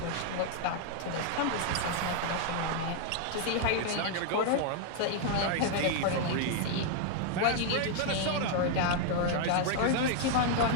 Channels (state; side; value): different; both; correlation 0.00